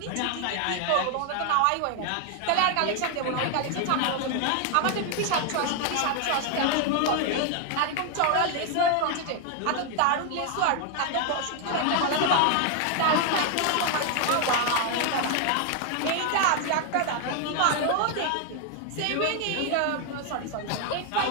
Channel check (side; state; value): both; different; correlation 0.00